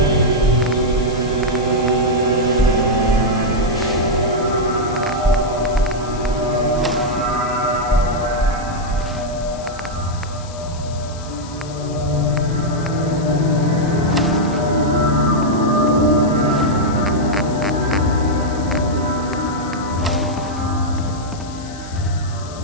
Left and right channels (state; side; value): noise; left; hiss, 18 dB below the sound